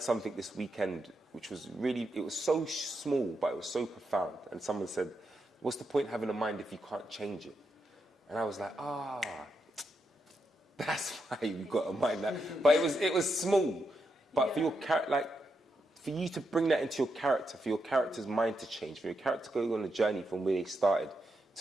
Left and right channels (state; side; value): normal; both; correlation 0.83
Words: something this weekend which was really, it was so small, but it was so profound. And someone said, what's the point having a mind if you can't change it? And I was like, that's why you've got a mind. But it was small. But for your character, like, for you to bring that into your character, for your character's mind to change, for your character to go on a journey from where they started